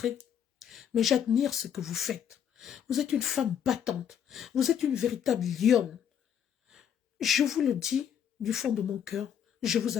mais j'admire ce que vous faites. Vous êtes une femme battante, vous êtes une véritable lionne. Je vous le dis du fond de mon cœur, je vous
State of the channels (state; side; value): quieter; right; 8.8 dB